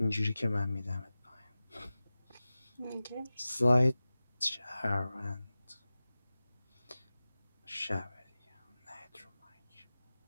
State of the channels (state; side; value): inverted; both; correlation -0.97